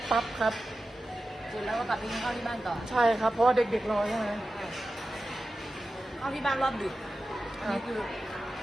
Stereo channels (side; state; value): both; normal; correlation 0.93